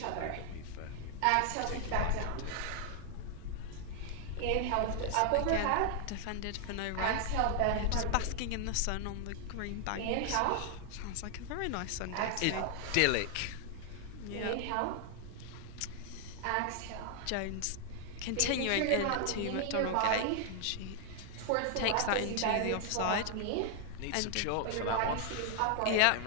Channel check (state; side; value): different; both; correlation 0.00